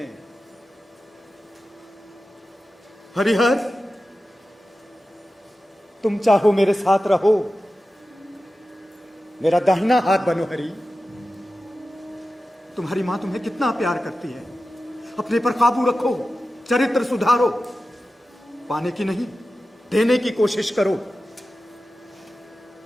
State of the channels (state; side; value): normal; both; correlation 0.94